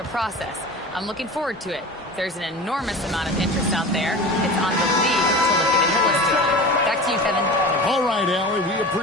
process. I'm looking forward to it. There's an enormous amount of interest out there. It's on the league to look at it holistically. Back to you, Kevin. All right, Allie, we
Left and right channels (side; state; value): both; normal; correlation 0.34